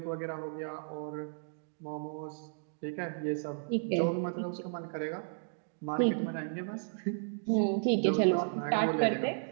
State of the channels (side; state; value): left; silent; digital silence